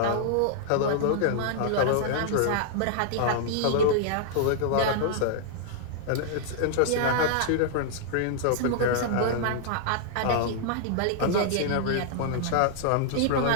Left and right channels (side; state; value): both; different; correlation -0.01